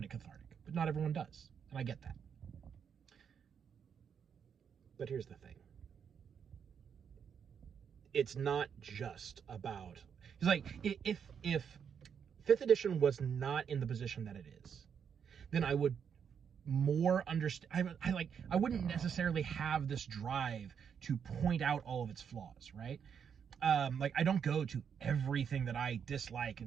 it cathartic, but not everyone does, and I get that. But here's the thing. It's not just about... It's like, if 5th edition was not in the position that it is, then I would more understand... I wouldn't necessarily have this drive to point out all of its flaws, right? I don't go to everything that I dislike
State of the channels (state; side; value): quieter; left; 7.4 dB